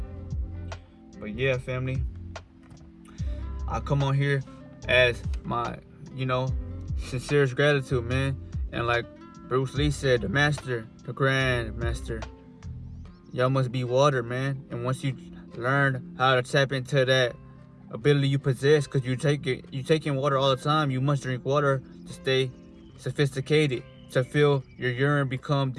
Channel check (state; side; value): identical; both; correlation 1.00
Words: But yeah, family, I come on here as my, you know, sincerest gratitude, man. And like Bruce Lee said, the master, the grand master, y'all must be water, man. And once you learn how to tap into that ability you possess, because you take in water all the time, you must drink water to stay sophisticated, to feel your urine become